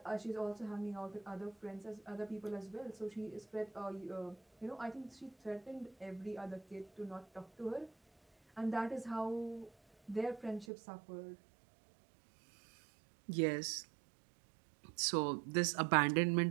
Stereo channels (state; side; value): drops out; left; at 10.7 s